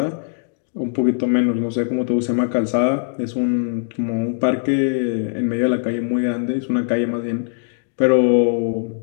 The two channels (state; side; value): silent; right; digital silence